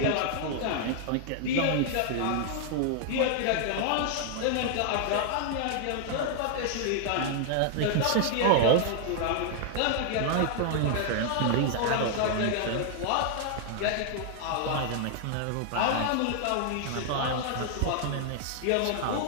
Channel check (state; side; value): different; both; correlation 0.00